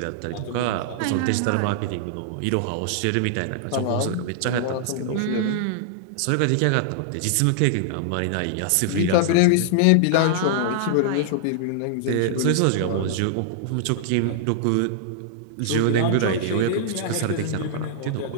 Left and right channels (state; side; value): different; both; correlation -0.01